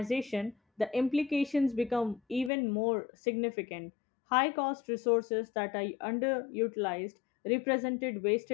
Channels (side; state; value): right; drops out; at 2.5 s